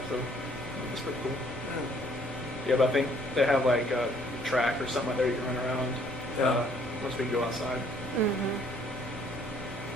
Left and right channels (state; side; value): normal; both; correlation 0.62